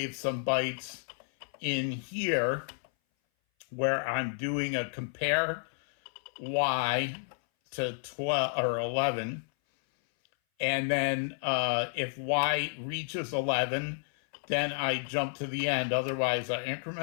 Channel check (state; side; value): silent; right; 57 dB below the other